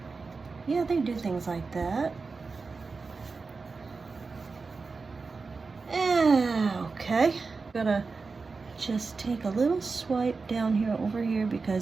Yeah, they do things like that. Okay. Gotta just take a little swipe down here over here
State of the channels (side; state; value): left; quieter; 4.4 dB